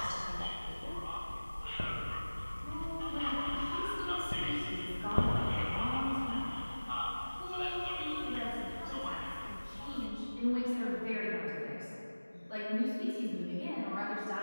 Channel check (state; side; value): inverted; both; correlation -1.00